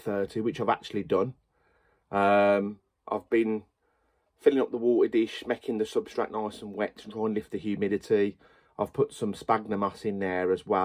which I've actually done. I've been filling up the water dish, making the substrate nice and wet to try and lift the humidity. I've put some sphagnum moss in there as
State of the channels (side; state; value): both; identical; correlation 1.00